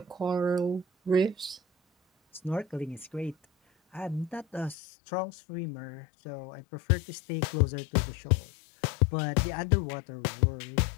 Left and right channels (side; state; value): right; drops out; at 4.8 s